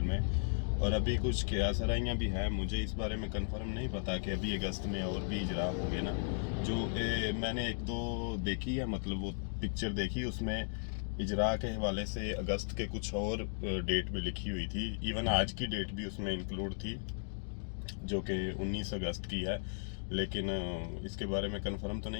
में। और अभी कुछ क्यासराइयाँ भी हैं, मुझे इस बारे में कंफर्म नहीं पता कि अभी अगस्त में और भी इजरा होंगे ना। जो मैंने एक दो देखी है, मतलब वो पिक्चर देखी, उसमें इजरा के हवाले से अगस्त के कुछ और डेट भी लिखी हुई थी। इवन आज की डेट भी उसमें इंक्लूड थी, जो कि 19 अगस्त की है। लेकिन इसके बारे में कंफर्म तो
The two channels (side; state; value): right; silent; digital silence